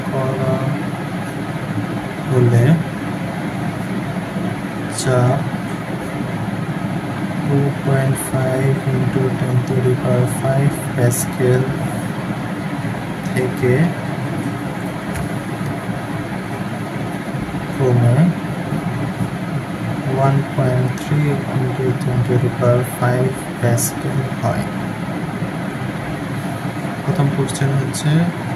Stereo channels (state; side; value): identical; both; correlation 1.00